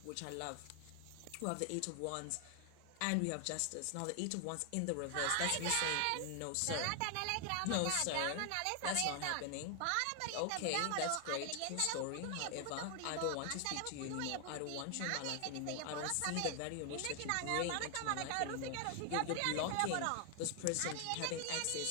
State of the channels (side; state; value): both; different; correlation 0.00